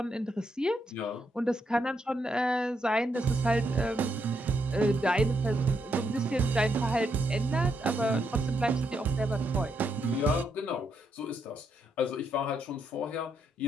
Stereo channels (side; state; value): both; normal; correlation 0.79